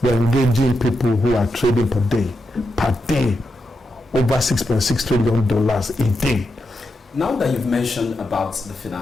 we're engaging people who are trading per day, over $6.6 trillion a day. Now that you've mentioned about the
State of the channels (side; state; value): both; normal; correlation 0.86